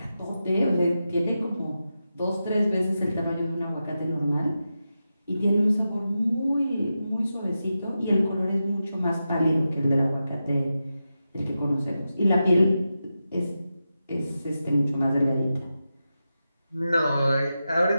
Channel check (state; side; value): inverted; both; correlation -0.90